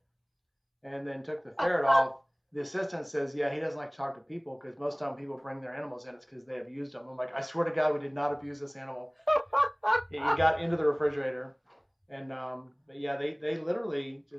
and then took the ferret off. The assistant says, "Yeah, he doesn't like to talk to people because most of the time people bring their animals in, it's because they abused them." I'm like, "I swear to God, we did not abuse this animal." He got into the refrigerator, and but yeah, they literally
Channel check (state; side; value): identical; both; correlation 1.00